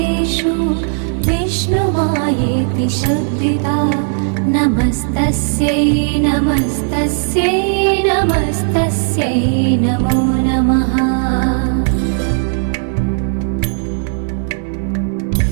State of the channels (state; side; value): silent; left; 60 dB below the other